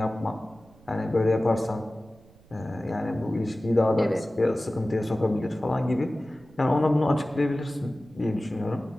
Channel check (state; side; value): noise; right; rumble, 26 dB below the sound